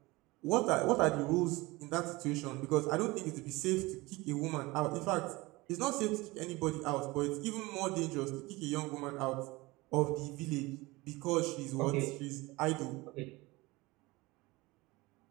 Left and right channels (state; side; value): quieter; left; 22.0 dB